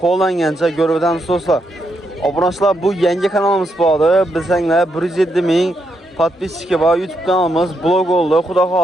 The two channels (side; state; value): both; normal; correlation 0.80